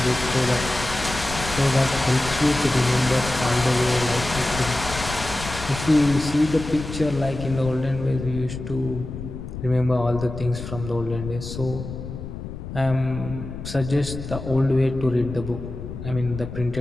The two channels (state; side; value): noise; left; rumble, 9 dB below the sound